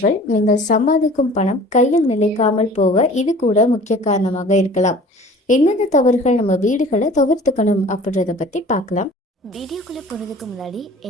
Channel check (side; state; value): both; normal; correlation 0.46